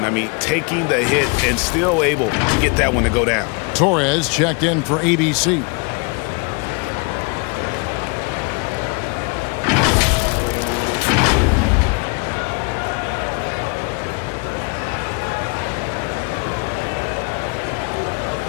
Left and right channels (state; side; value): quieter; right; 32.6 dB